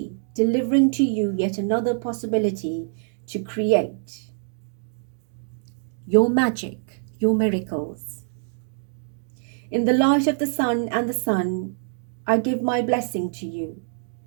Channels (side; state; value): left; silent; digital silence